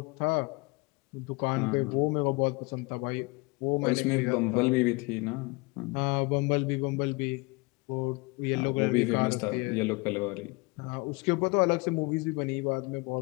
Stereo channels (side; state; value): right; quieter; 27.2 dB